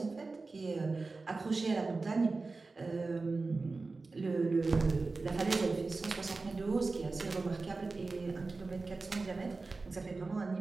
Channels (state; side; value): quieter; left; 3.8 dB